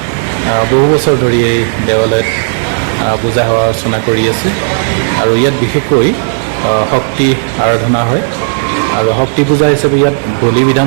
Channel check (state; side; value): silent; left; digital silence